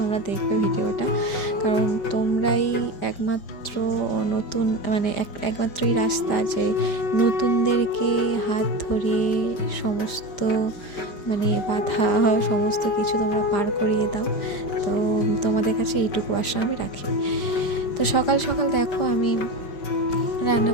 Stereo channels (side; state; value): right; late; 5.0 ms